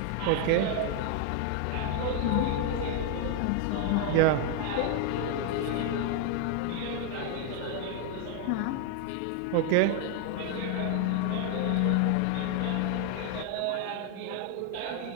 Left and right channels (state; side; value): different; both; correlation 0.01